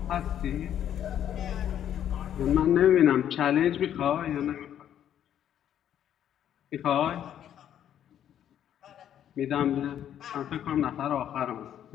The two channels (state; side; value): quieter; right; 10.2 dB